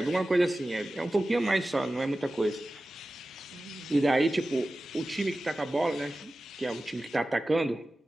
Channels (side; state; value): both; normal; correlation 0.95